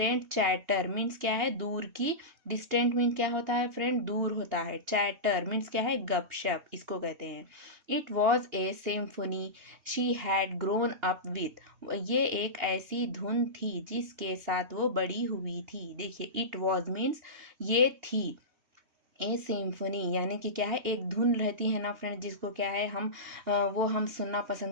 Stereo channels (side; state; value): left; late; 2.8 ms